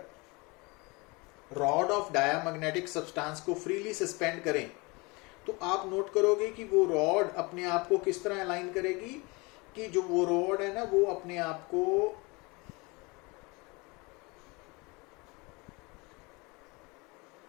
रॉड ऑफ डायामैग्नेटिक सब्सटेंस को फ्रीली सस्पेंड करें, तो आप नोट करोगे कि वो रॉड अपने आप को किस तरह अलाइन करेगी, कि जो वो रॉड है ना वो अपने आप को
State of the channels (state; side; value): quieter; right; 26.5 dB